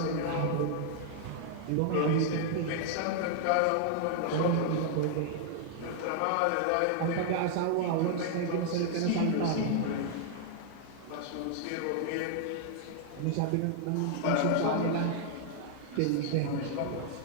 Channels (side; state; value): both; different; correlation 0.00